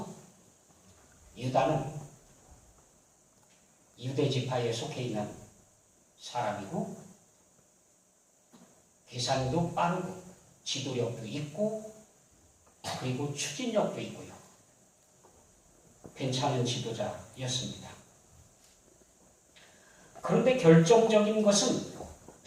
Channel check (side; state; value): both; identical; correlation 1.00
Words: 유다는 유대 지파에 속해 있는 사람이고 계산도 빠르고 지도력도 있고 그리고 추진력도 있고요. 괜찮은 지도자였습니다. 그런데 결정적인 것은